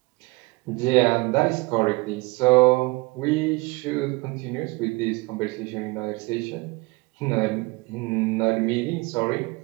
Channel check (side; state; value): left; quieter; 24.6 dB